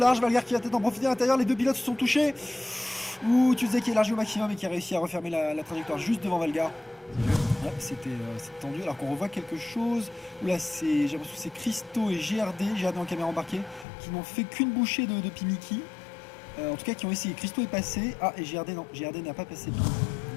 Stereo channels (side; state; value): right; drops out; at 13.9 s